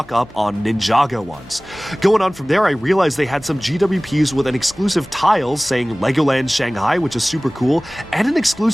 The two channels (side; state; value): left; noise; hum, 28 dB below the sound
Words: up on Ninjago ones. Going on from there, I realized they had some GWPs with an exclusive tile saying Legoland Shanghai, which is super cool, and an